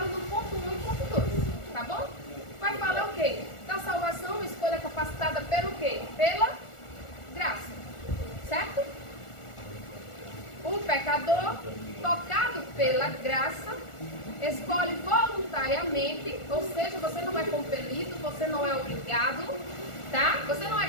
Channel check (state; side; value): late; right; 1.4 ms